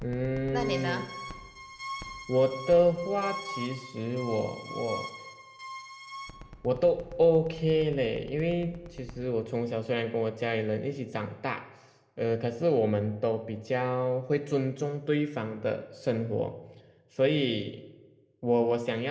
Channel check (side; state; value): both; identical; correlation 1.00